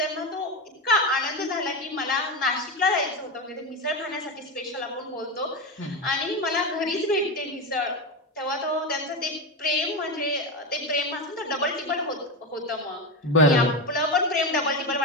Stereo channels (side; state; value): both; normal; correlation 0.16